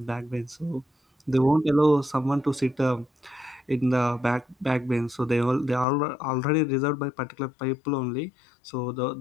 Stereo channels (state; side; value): drops out; right; at 5.9 s